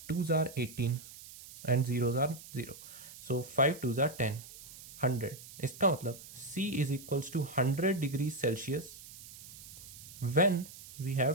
2s are 18 and 0s are 0, so 5 2s are 10, 100। इसका मतलब C is equals to 100 degrees Celsius when we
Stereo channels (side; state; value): right; noise; hiss, 16 dB below the sound